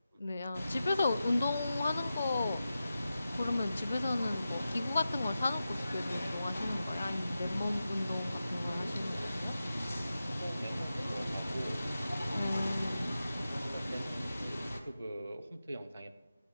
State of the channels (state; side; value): inverted; both; correlation -0.92